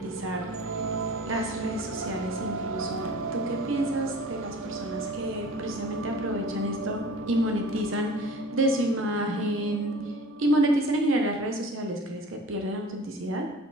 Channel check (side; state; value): both; normal; correlation 0.42